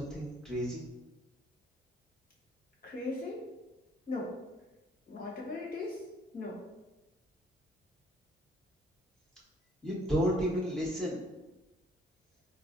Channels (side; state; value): both; normal; correlation 0.61